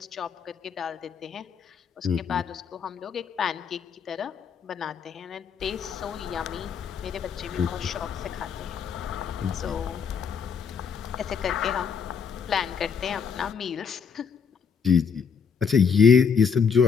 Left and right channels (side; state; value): right; quieter; 6.5 dB